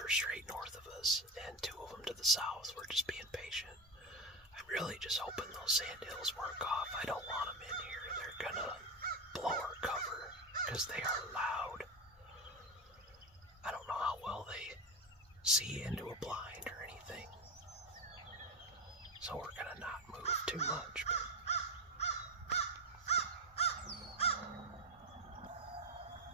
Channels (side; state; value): both; normal; correlation 0.15